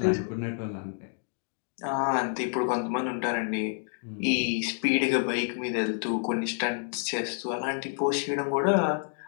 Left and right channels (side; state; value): right; silent; 59 dB below the other